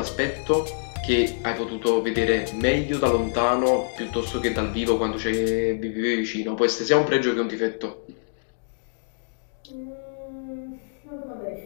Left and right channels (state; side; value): silent; right; digital silence